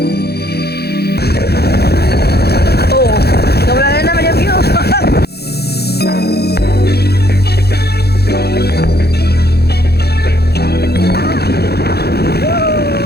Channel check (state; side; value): late; right; 0.47 ms